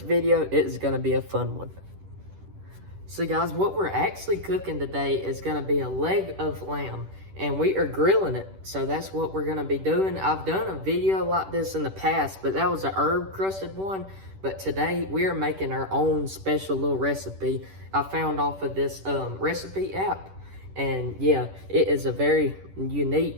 video. It is going to be a fun one. So guys, what we're actually cooking today is going to be a leg of lamb, and we are grilling it. So that's what we're going to be doing. I've done a video like this in the past, but that was a herb crusted one. But today we are making our own special little recipe I found off of this recipe app. And yeah, it is a very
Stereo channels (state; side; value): late; left; 10 ms